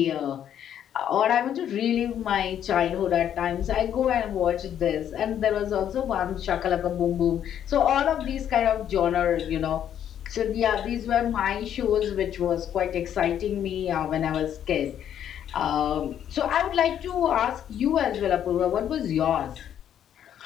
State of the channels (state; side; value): quieter; right; 9.9 dB